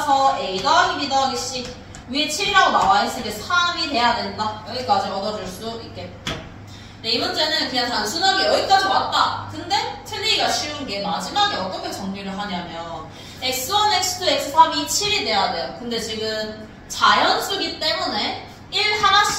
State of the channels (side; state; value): both; identical; correlation 1.00